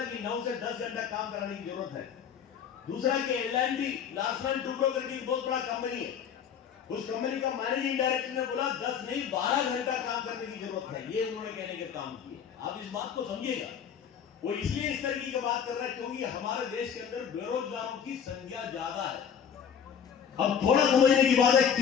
कि 9 से 10 घंटा काम कराने की जरूरत है। दूसरा कि L&T लार्सन टुब्रो करके एक बहुत बड़ा कंपनी है, उस कंपनी का मैनेजिंग डायरेक्टर ने बोला 10 नहीं 12 घंटा काम करने की जरूरत है, ये उन्होंने कहने के काम किए। आप इस बात को समझिएगा, वो इसलिए इस तरीके की बात कर रहा है क्योंकि हमारे देश के अंदर बेरोजगारों की संख्या ज्यादा है। अब थोड़ा समझने की बात है,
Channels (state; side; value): quieter; right; 7.8 dB